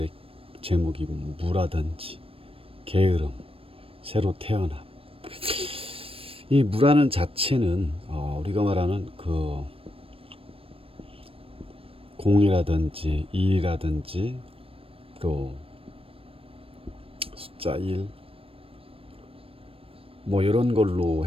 제목이 무라든지 게으름, 새로 태어남. 이 무라는 자체는 우리가 말하는 그 공이라든지 일이라든지 또 숫자 1 뭐 이런 걸로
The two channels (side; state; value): left; late; 0.27 ms